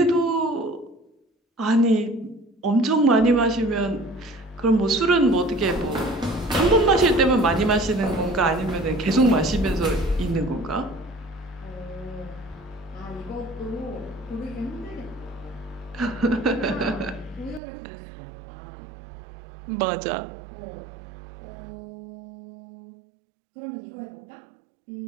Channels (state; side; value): drops out; left; at 17.6 s